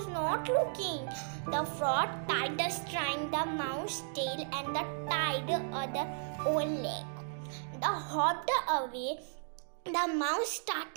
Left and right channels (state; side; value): silent; left; digital silence